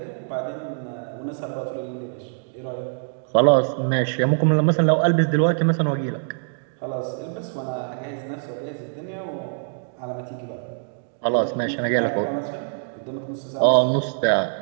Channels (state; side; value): silent; left; digital silence